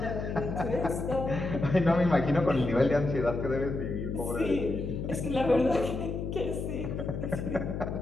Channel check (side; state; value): left; noise; hum, 4 dB below the sound